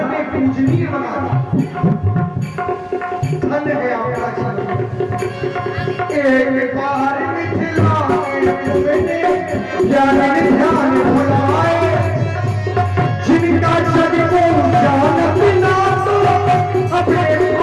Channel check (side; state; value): both; identical; correlation 1.00